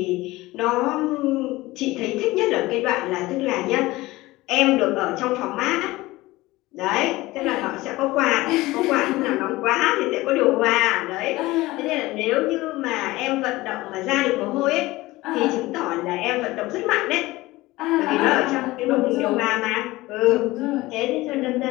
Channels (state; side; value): quieter; right; 19.3 dB